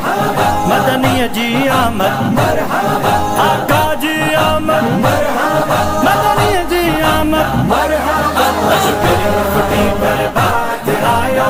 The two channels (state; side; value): identical; both; correlation 1.00